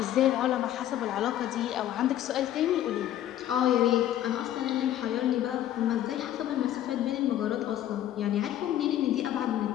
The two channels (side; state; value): right; quieter; 12.1 dB